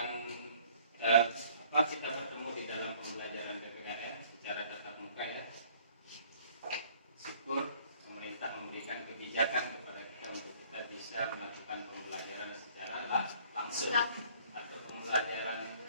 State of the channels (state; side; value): inverted; both; correlation -0.56